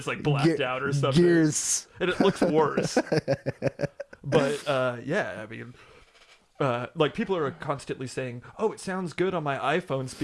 blacked out or something. Gears, and it looks worse. But I mean. People are constantly saying, "Oh, it sounds good on my iPhone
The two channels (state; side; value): identical; both; correlation 1.00